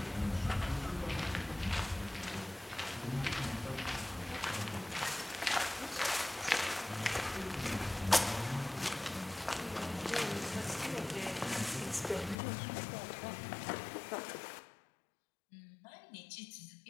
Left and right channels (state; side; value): drops out; right; at 12.4 s